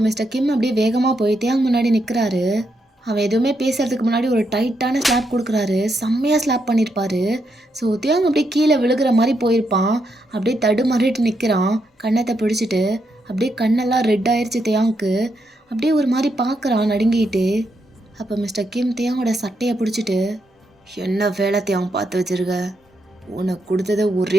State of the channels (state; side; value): normal; both; correlation 0.80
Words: மிஸ்டர் கிம் அப்படியே வேகமாக போய் தேயாங் முன்னாடி நிற்கிறாரு. அவன் எதுவுமே பேசுறதுக்கு முன்னாடி ஒரு டைட்டான ஸ்லாப் கொடுக்குறாரு. செம்மையாக ஸ்லாப் பண்ணியிருப்பாரு. ஸோ தேயாங் அப்படியே கீழே விழுகிற மாதிரி போயிருப்பான். அப்படியே தடுமாறிட்டு நிற்கிறான் கன்னத்தை பிடிச்சிட்டு. அப்படியே கண்ணெல்லாம் ரெட் ஆயிடுச்சு தேயாங்க்கு. அப்படியே ஒரு மாதிரி பார்க்குறான் நடுங்கிட்டு. அப்போ மிஸ்டர் கிம் தேயாங்கோட சட்டையை பிடிச்சிட்டு, என்ன வேலை தேயாங் பார்த்து வச்சிருக்க? உனக்கு கொடுத்தது